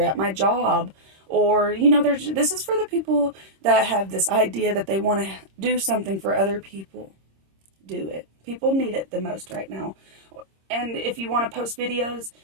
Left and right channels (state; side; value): late; left; 26 ms